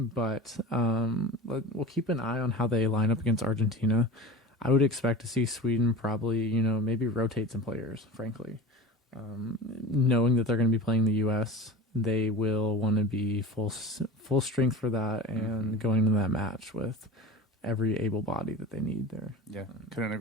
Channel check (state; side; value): normal; both; correlation 0.33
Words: we'll keep an eye on how they line up against Argentina. I would expect to see Sweden probably, maybe rotate some players, frankly. Knowing that they're going to be playing the U.S., they will want to be full strength for that and going into that match with every able body that they need there. Yeah, couldn't